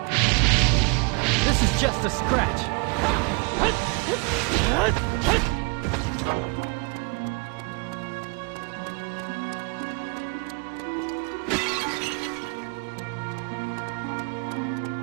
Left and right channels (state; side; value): quieter; left; 32.0 dB